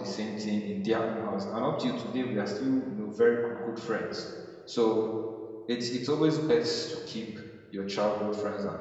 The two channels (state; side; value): identical; both; correlation 1.00